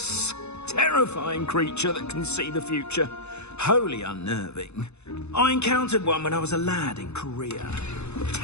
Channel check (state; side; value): late; right; 0.81 ms